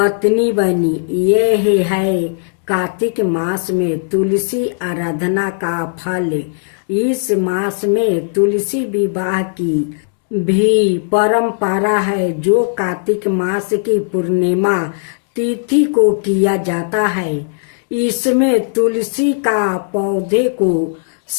बनी। यह है कार्तिक मास में तुलसी आराधना का फल। इस मास में तुलसी विवाह की भी परंपरा है जो कार्तिक मास की पूर्णिमा तिथि को किया जाता है। इसमें तुलसी का पौधे को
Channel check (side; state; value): right; silent; digital silence